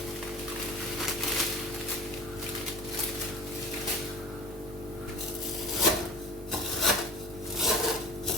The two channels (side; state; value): both; normal; correlation 0.39